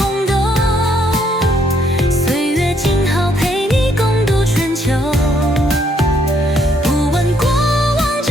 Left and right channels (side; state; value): both; normal; correlation 0.70